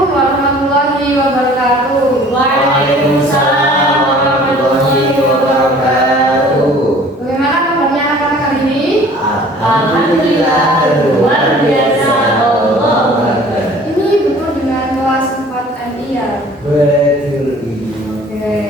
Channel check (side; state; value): both; normal; correlation 0.50